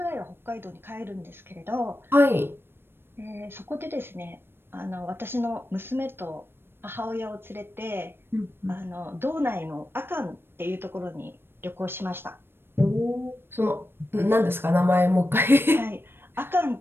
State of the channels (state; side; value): late; left; 0.11 ms